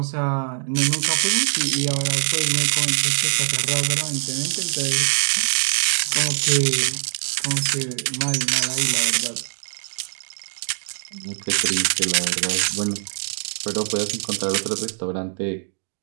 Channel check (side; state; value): left; silent; digital silence